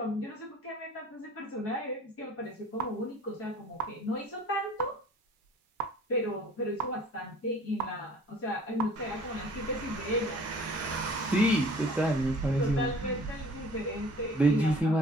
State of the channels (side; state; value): both; normal; correlation 0.49